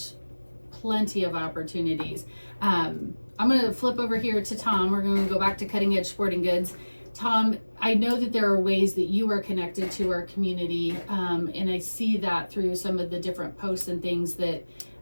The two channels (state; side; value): inverted; both; correlation -1.00